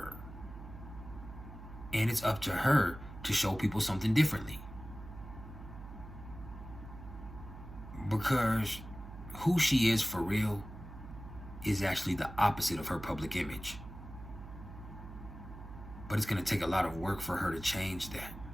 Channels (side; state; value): right; noise; hum, 13 dB below the sound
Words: And it's up to her to show people something differently. Because who she is for real is actually the opposite of her public image. But it's going to take a lot of work for her to change that.